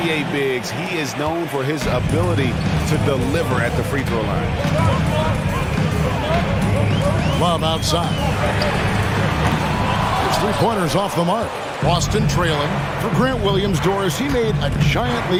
bigs, he is known for his ability to deliver at the free throw line. Love outside. His 3-pointers off the mark. Boston trailing. For Grant Williams-Doris, he made a giant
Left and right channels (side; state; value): both; identical; correlation 1.00